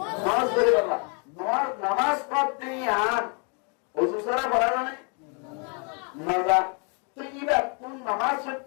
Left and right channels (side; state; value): right; quieter; 37.1 dB